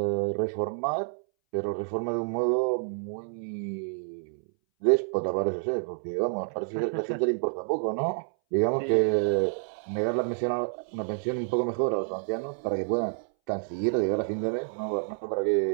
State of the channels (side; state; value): left; silent; 59 dB below the other